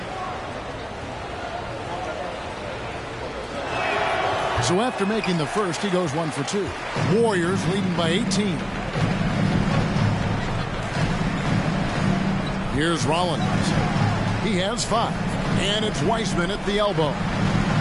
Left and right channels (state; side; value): identical; both; correlation 1.00